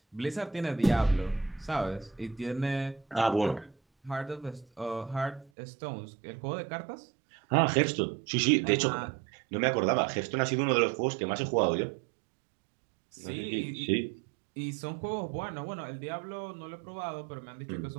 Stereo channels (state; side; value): drops out; left; at 5.5 s